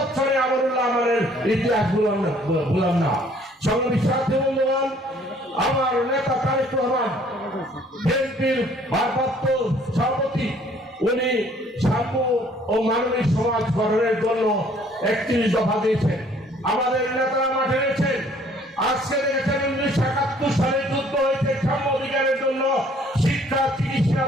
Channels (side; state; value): both; normal; correlation 0.59